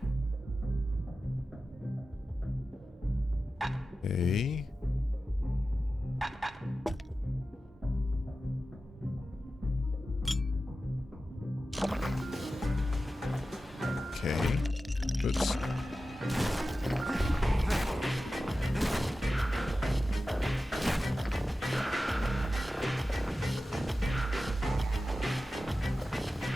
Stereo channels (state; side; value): normal; both; correlation 0.94